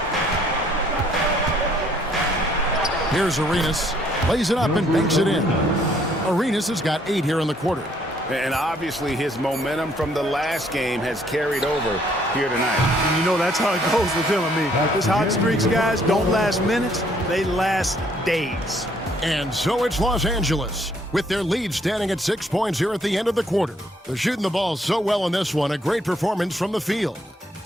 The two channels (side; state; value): both; normal; correlation 0.65